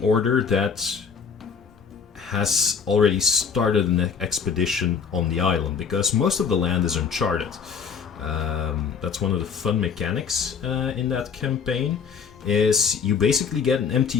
order that has already started an expedition on the island, because most of the land is uncharted. That's one of the fun mechanics in that campaign, is you basically get an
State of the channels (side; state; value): right; quieter; 6.4 dB